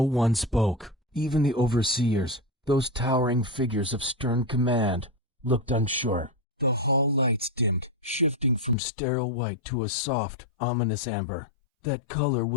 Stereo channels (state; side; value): drops out; right; at 8.8 s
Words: one spoke. Even the overseers, those towering figures of stern command, looked unsure. The hall lights dimmed, shifting from sterile white to a soft, ominous amber. That color